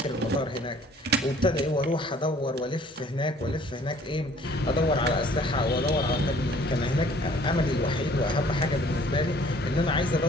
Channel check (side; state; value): both; normal; correlation 0.56